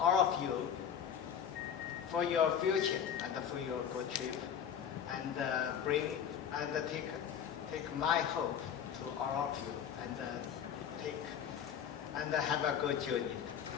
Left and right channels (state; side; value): quieter; right; 8.4 dB